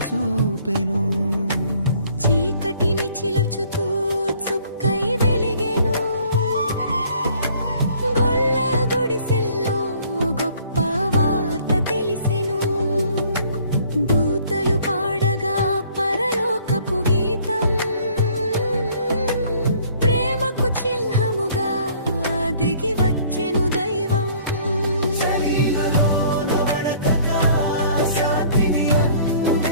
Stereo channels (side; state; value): both; inverted; correlation -0.57